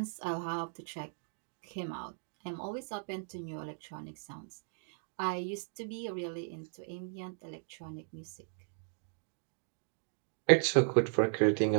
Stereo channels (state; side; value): silent; left; digital silence